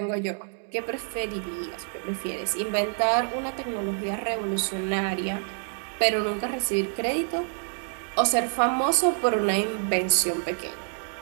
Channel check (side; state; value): left; silent; 60 dB below the other